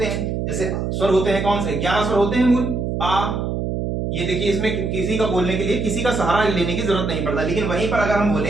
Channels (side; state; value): right; noise; hum, 2 dB below the sound